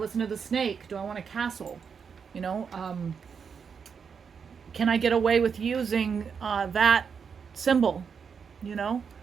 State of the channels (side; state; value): left; quieter; 6.3 dB